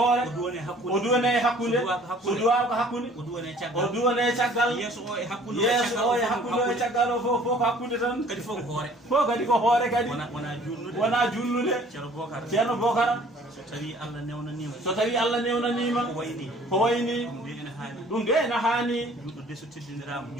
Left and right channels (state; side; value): normal; both; correlation 0.54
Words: o duwane hakkunde so duwaka hakkunde o duwane caggal yeeso o e hakkunde o e caggal o fof ko hakkunde tan kadi fof ko hoore kadi wona julnude ceerno Bocara so tawi Allah newnanima ko wayni ɗum de ene haani